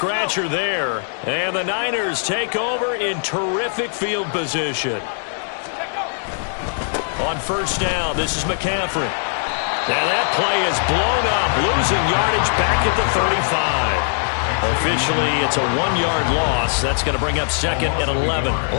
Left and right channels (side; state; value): right; silent; digital silence